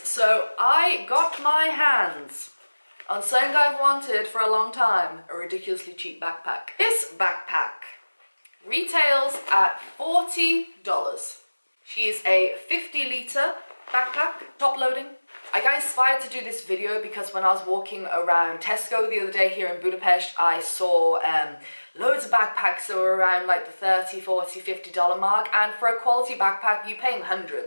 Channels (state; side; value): inverted; both; correlation -1.00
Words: I got my hands on something I've wanted for a long time, a ridiculously cheap backpack. This backpack retails at $40. She's a 50-litre backpack, top loading. I got inspired to do this video because when I was walking around Tesco the other day here in Budapest, I saw loads of backpacks that were around like the $30, $40, $50 mark, and for a quality backpack you pay